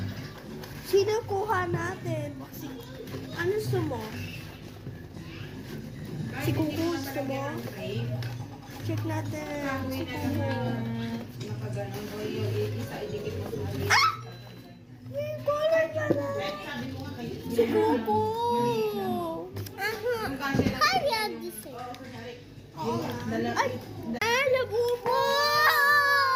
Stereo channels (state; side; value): identical; both; correlation 1.00